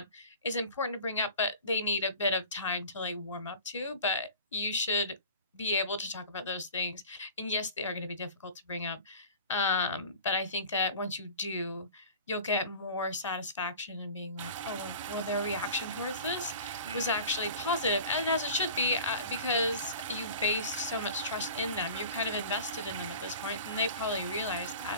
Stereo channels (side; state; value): both; inverted; correlation -0.40